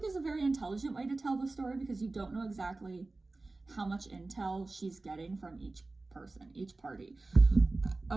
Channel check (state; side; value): quieter; left; 3.3 dB